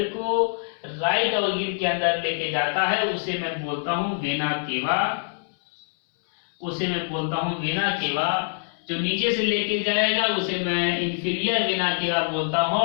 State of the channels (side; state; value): right; silent; 62 dB below the other